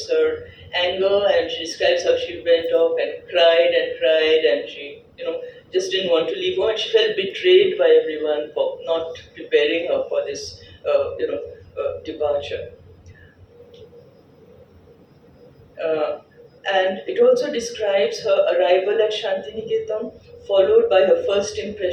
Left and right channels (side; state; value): both; identical; correlation 1.00